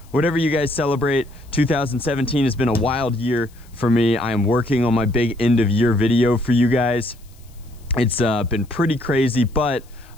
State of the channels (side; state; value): left; noise; hiss, 29 dB below the sound